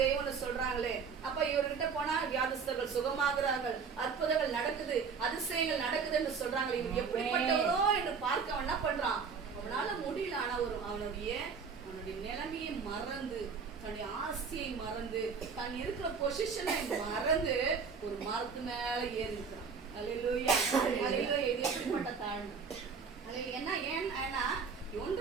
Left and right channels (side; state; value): left; quieter; 5.7 dB